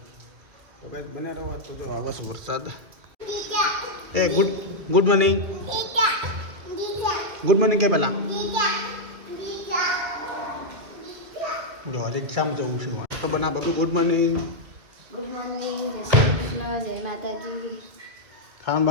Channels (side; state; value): left; late; 2.2 ms